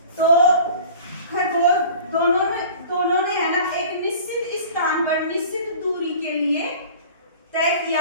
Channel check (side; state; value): both; inverted; correlation -0.43